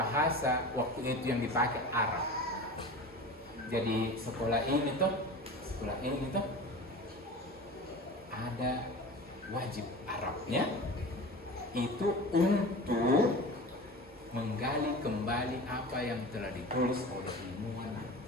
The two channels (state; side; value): normal; both; correlation 0.34